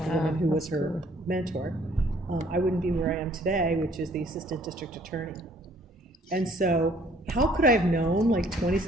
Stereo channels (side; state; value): both; normal; correlation 0.60